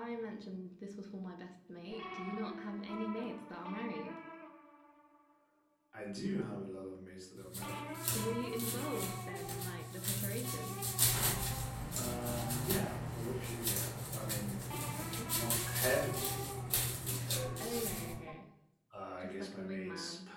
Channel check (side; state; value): both; identical; correlation 1.00